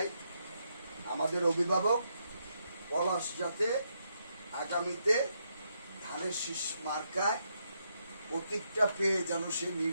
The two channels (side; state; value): both; inverted; correlation -0.79